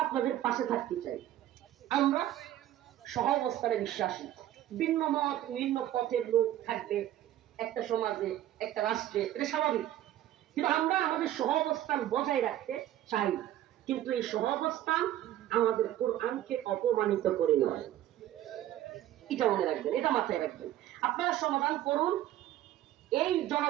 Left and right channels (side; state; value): left; quieter; 13.1 dB